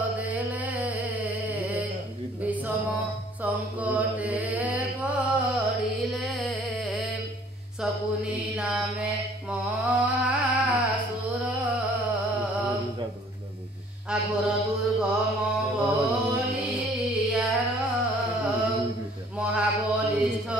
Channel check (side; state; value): both; normal; correlation 0.56